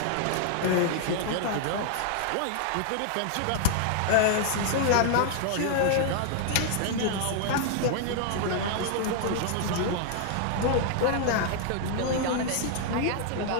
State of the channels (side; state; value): both; different; correlation 0.00